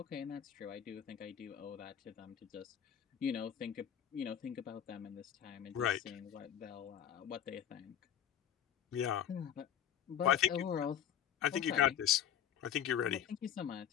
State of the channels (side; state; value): right; quieter; 9.8 dB